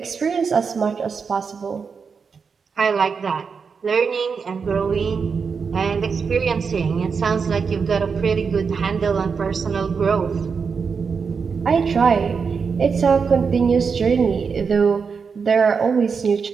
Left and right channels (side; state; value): left; quieter; 5.6 dB